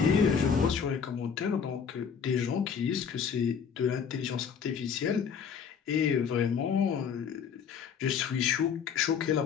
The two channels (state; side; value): quieter; right; 6.9 dB